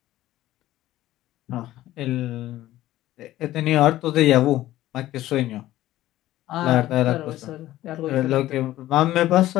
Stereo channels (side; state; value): right; quieter; 14.9 dB